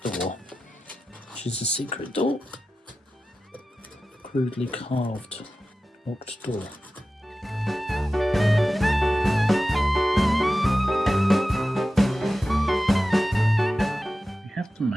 door, which is a secret door. Crudely carved locked door. We have the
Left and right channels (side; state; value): both; normal; correlation 0.94